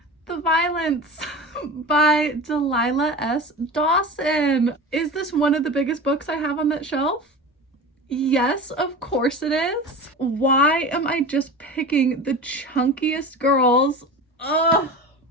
The Violence by Delilah S. Dawson. Is this one of the biggest books I have on that shelf? Yes, of course it is. Why am I just picking the chunkiest girls? Ugh.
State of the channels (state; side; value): normal; both; correlation 0.30